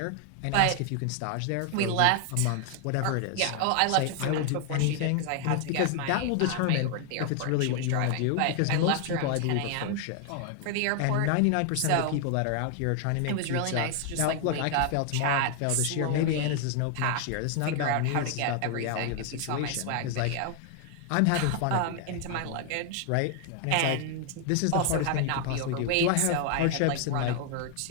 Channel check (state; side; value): different; both; correlation 0.00